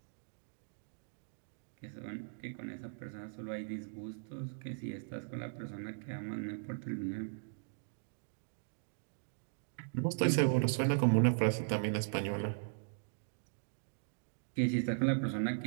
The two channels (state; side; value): silent; left; digital silence